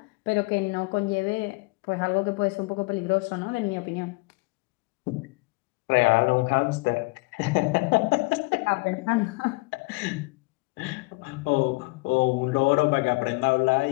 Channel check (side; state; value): right; quieter; 26.0 dB